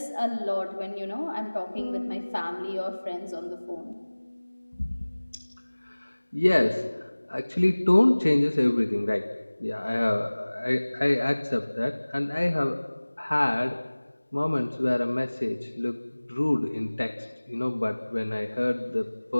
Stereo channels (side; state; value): both; inverted; correlation -1.00